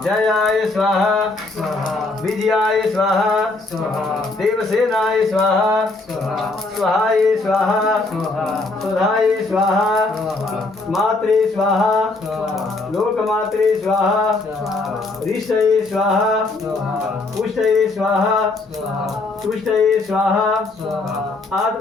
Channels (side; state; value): right; quieter; 3.3 dB